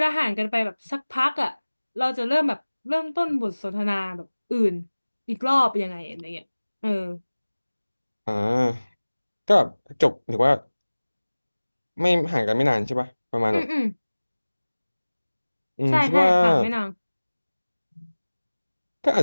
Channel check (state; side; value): inverted; both; correlation -1.00